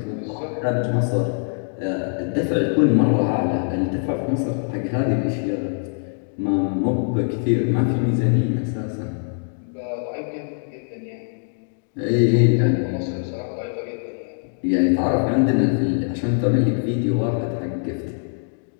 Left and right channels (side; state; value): right; silent; digital silence